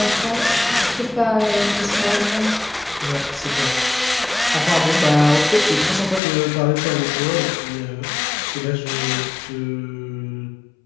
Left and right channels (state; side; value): drops out; right; at 6.2 s